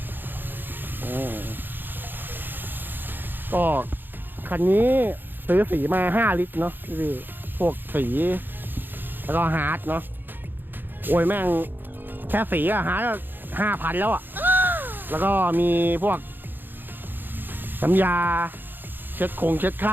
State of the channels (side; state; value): left; late; 0.094 ms